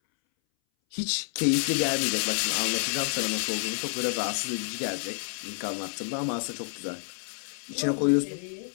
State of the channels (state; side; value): silent; right; 59 dB below the other